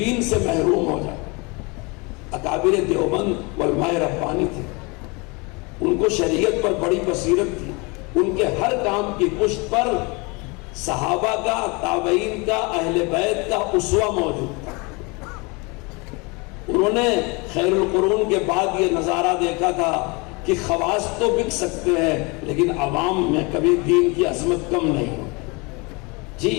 سے محروم ہو جائے۔ اکابر دیوبند علماء ربانی تھے، ان کو شریعت پر بڑی بصیرت تھی، ان کے ہر کام کی پشت پر صحابہ کا، تابعین کا، اہل بیت کا اسوہ موجود تھا۔ انہوں نے خیر القرون کے بعد یہ نظارہ دیکھا تھا کہ خواص تو بک سکتے ہیں لیکن عوام میں کبھی دین کی عظمت کم نہیں ہو۔ جی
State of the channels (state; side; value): quieter; right; 28.4 dB